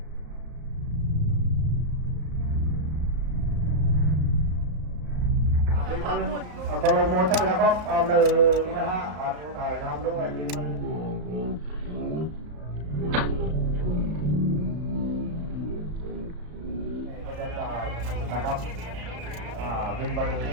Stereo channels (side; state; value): left; late; 34 ms